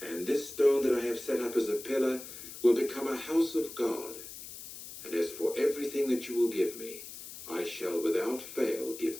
And this stone that I have set up as a pillar will become a house of God. And as for everything that you will give me, I shall without fail give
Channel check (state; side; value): noise; left; hiss, 13 dB below the sound